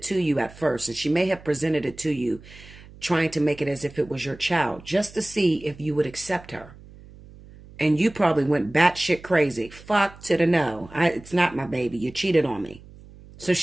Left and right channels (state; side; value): noise; right; hum, 20 dB below the sound